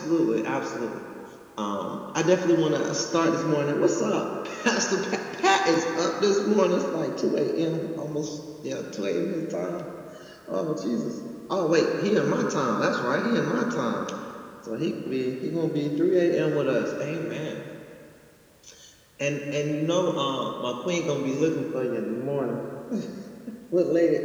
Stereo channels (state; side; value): identical; both; correlation 1.00